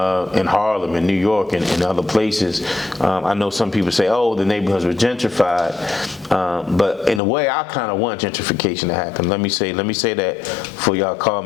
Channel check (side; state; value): right; drops out; at 7.2 s